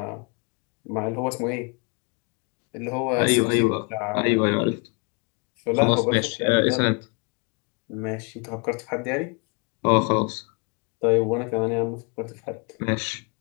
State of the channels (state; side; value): quieter; right; 33.8 dB